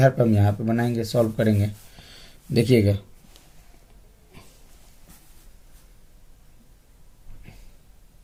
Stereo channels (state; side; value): identical; both; correlation 1.00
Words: पर हम यहाँ पे बनाएंगे, सॉल्व करेंगे। देखिएगा